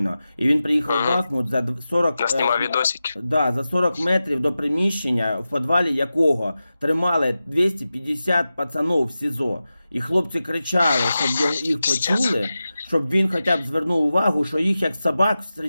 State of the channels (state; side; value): inverted; both; correlation -0.93